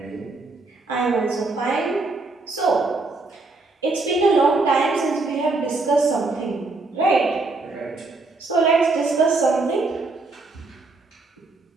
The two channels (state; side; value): quieter; left; 3.5 dB